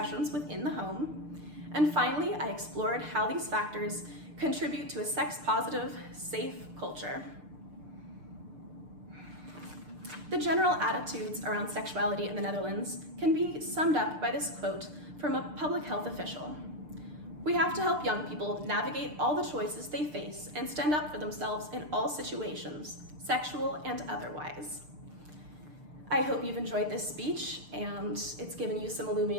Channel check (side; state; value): left; late; 6.7 ms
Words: within the home. And finally, I explored how these factors contribute to a sex-positive, safe culture. The general attitudes around sexuality in the Netherlands can be summed up by this quote from a public health official. "We have to help young people navigate all the choices they face and stand up for themselves in all situations, sexual and otherwise." I hope you've enjoyed this speech and it's given you some